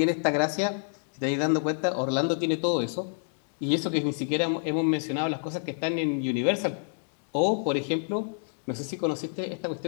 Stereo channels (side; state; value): right; silent; digital silence